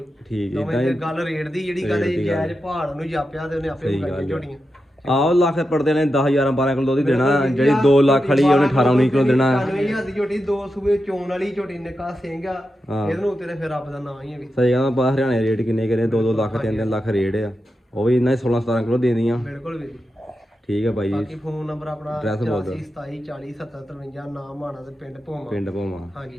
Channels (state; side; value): normal; both; correlation 0.89